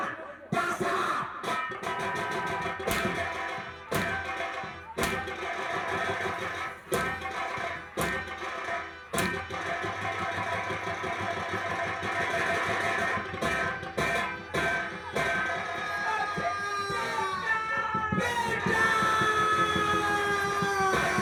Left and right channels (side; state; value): both; identical; correlation 1.00